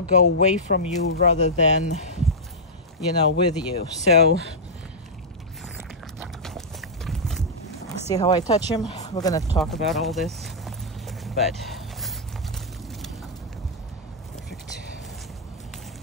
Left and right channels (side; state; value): both; normal; correlation -0.09